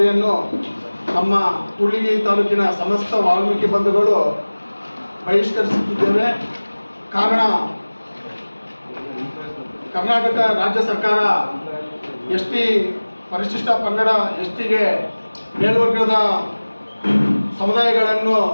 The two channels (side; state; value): both; inverted; correlation -1.00